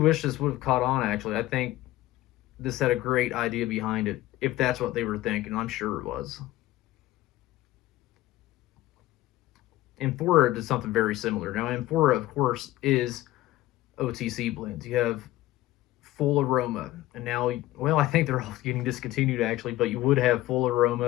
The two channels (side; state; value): right; quieter; 16.3 dB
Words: this would have caught on, actually. I think this had a great idea behind it, if that's what they were thinking. I'm sure it was. Amphora did something very similar. Now, Amphora, of course, is OTC blends. You have full aroma, and now, well, I think they're all getting discontinued, actually, but you would have full